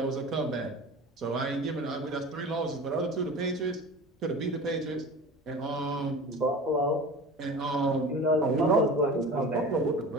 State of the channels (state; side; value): normal; both; correlation 0.36